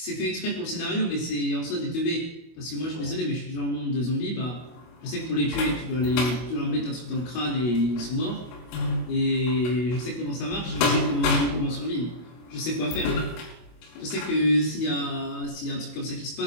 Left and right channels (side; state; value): right; late; 25 ms